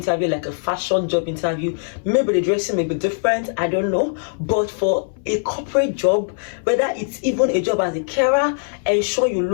like a fashion job interview, maybe the dressing may be different, I don't know. But for a corporate job, whether it's even a job as a carer, ensure you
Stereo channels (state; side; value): silent; right; 60 dB below the other